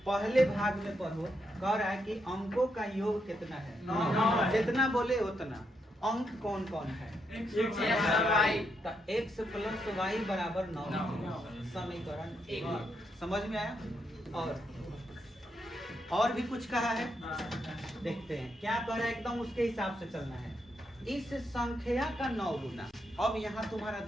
पहले भाग में पढ़ो, कह रहा है कि अंकों का योग कितना है? 9। जितना बोले उतना। अंक कौन कौन है? तो x प्लस y बराबर 9। समीकरण 1। समझ में आया? और भी कुछ कहा है, देखते हैं क्या कह रहा है। एकदम उसके हिसाब से चलना है। इस संख्या का 9 गुना। अब यहाँ तुम्हारा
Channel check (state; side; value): normal; both; correlation 0.80